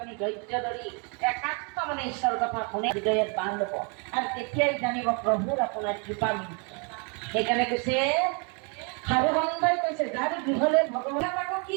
ধৈৰ্য ধৰি একান্ত মানে ঈশ্বৰৰ কথা শুনে হৃদয়ত বান্ধ ল'ব আৰু তেতিয়াই জানিব প্ৰভুৰ আপোনাৰ কৃপা মিলিছে। সেইকাৰণে কৈছে সাধু সন্তাই কৈছে যাৰ গৃহলৈ ভগৱানে আকৌ কি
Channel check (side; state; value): left; quieter; 35.9 dB